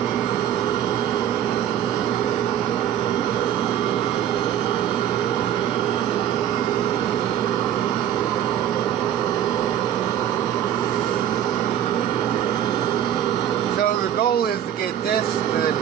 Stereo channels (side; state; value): left; quieter; 10.5 dB